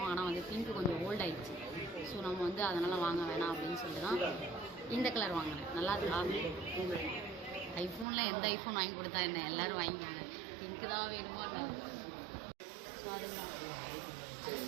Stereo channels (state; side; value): drops out; left; at 8.1 s